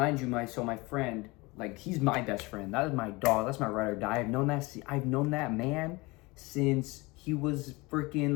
you, my friend, like he's my best friend. That is my dog. That's my ride or die. I've known that man since he was freaking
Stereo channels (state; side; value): quieter; right; 24.2 dB